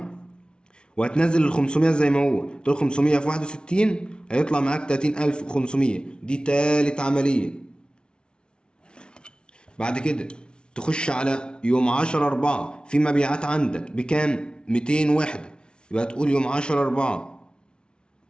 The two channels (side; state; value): right; late; 0.055 ms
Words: وهتنزل ال 500 زي ما هو، تقول 500 في 61 هيطلع معاك 30500. دي تالت عملية. بعد كده تخش على يوم 10/4 في مبيعات عندك بكام؟ 200 وحدة. يبقى تقول يوم 10/4